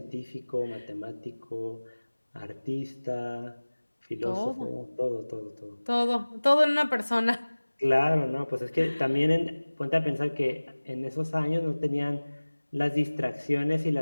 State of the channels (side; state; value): both; inverted; correlation -1.00